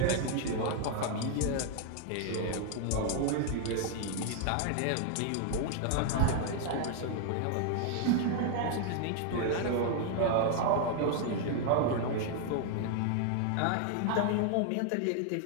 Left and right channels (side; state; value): both; different; correlation 0.00